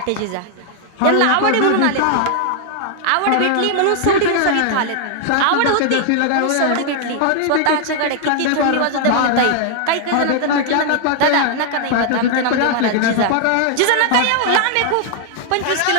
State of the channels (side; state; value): both; different; correlation 0.00